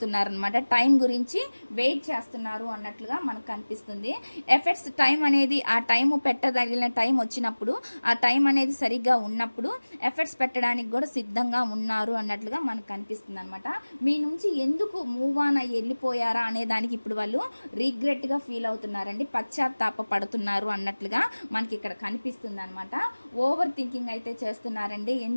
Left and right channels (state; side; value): inverted; both; correlation -1.00